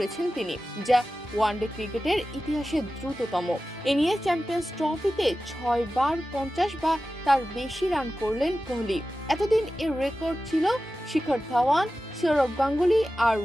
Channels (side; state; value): both; normal; correlation 0.94